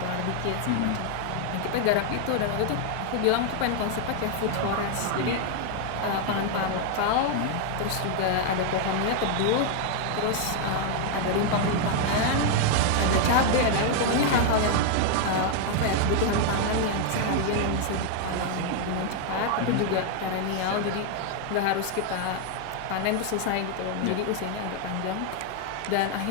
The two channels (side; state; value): both; different; correlation 0.00